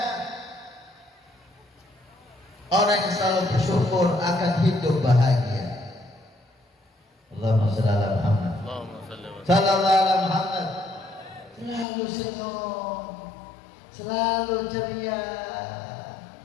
Orang yang selalu bersyukur akan hidup bahagia. Allahumma shalli ala Muhammad. Sallallahu ala Muhammad. Selalu senyum, selalu ceria.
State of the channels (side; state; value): right; drops out; at 11.9 s